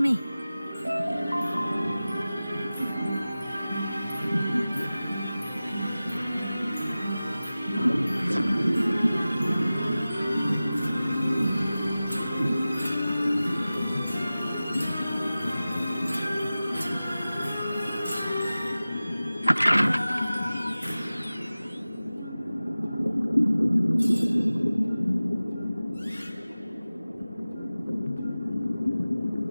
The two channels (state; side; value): inverted; both; correlation -0.97